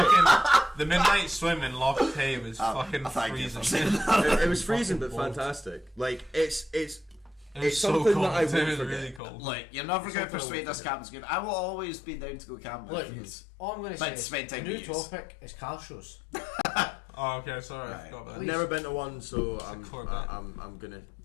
the midnight swim in Loch Tay was fucking freezing. It was freezing, but fantastic. Like it's so something cold. that I It won't was forget. really cold. Look, you're never going to persuade us camping's good. I will always be down to go camping. Look, all I'm going to say But is spend time new with yous. topic is car shows. Oh, okay, sorry, I Right. forgot about I've that. never been to one, so a I'm Corvette. gonna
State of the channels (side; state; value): right; drops out; at 9.2 s